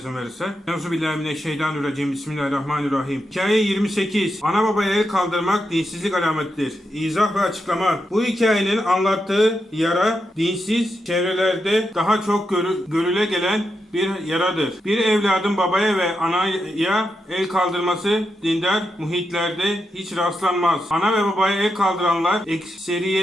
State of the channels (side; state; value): both; normal; correlation 0.85